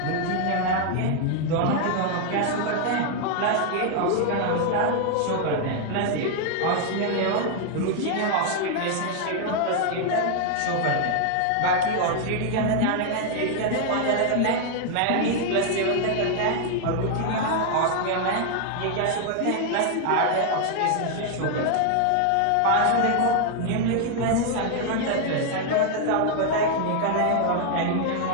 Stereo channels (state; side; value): different; both; correlation 0.00